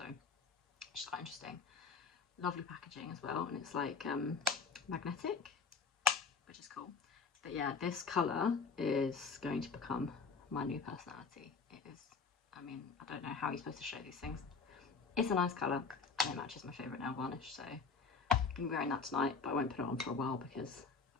it's quite interesting. Lovely packaging as well, and it's like magnetic, which is cool. But yeah, this colour is going to become my new personality. It is, I mean, I don't know how you're supposed to show these things. It's a nice colour, and it matches my favourite nail varnish, so I'm going to be wearing that tonight, but I won't put it on for a while because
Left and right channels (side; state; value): right; quieter; 5.1 dB